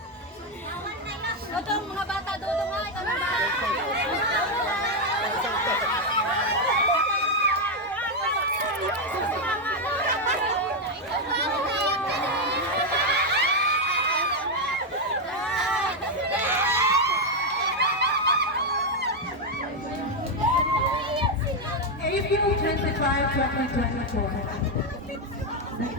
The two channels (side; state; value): both; normal; correlation 0.03